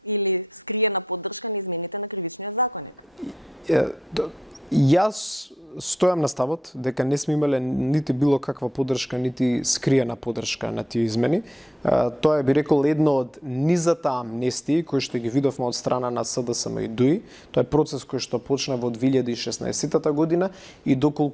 или скриена поддршка на измените на кривичниот законник. Јас стојам на ставот дека не сме имале нити било каква поддршка, нити скриена поддршка на тие измени. Тоа е, би рекол, едно од низата амнестии кои што ги видовме од страна на СДСМ и ДУИ. Тоа е процес кој што почна во 2016 година и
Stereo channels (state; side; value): normal; both; correlation 0.85